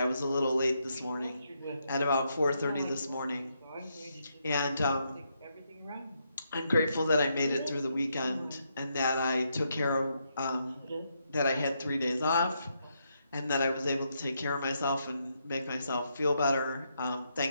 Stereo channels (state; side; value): inverted; both; correlation -0.79